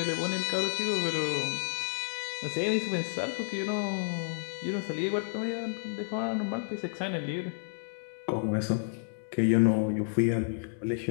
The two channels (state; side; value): silent; right; digital silence